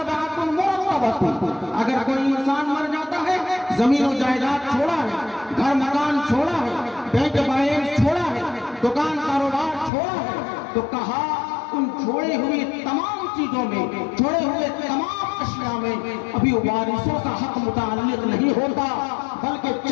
مرتبۃ۔ اگر کوئی انسان مر جاتا ہے، زمین و جائیداد چھوڑا ہے، گھر مکان چھوڑا ہے، بینک بیلنس چھوڑا ہے، دکان کاروبار چھوڑا ہے، تو کہا ان چھوڑے ہوئی تمام چیزوں میں، چھوڑے ہوئے تمام اشیاء میں ابھی وارثوں کا حق متعلق نہیں ہوتا، بلکہ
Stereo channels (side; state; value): right; drops out; at 9.9 s